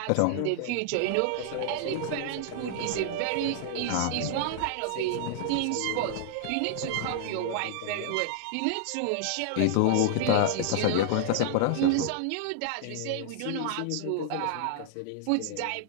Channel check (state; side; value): different; both; correlation -0.01